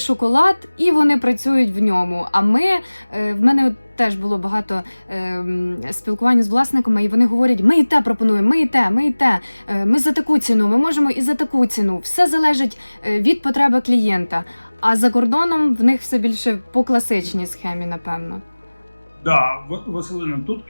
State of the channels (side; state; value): both; inverted; correlation -1.00